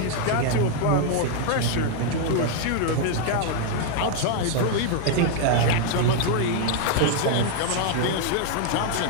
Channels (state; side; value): different; both; correlation 0.00